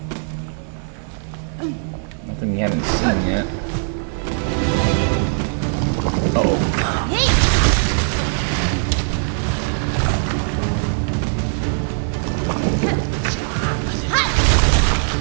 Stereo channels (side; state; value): left; silent; 57 dB below the other